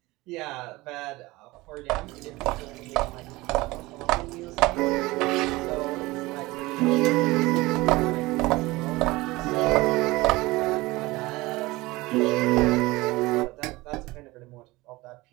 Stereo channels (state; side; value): quieter; left; 20.8 dB